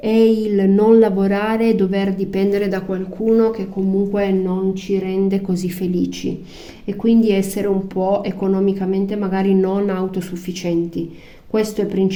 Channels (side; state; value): both; identical; correlation 1.00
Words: il non lavorare e dover dipendere da qualcuno che comunque non ci rende così felici e quindi essere un po' economicamente magari non autosufficienti. Questo è